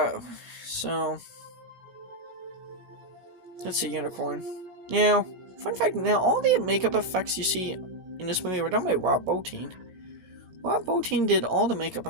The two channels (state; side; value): late; left; 17 ms